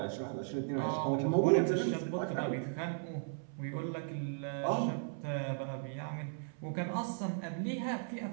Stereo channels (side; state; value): left; silent; 54 dB below the other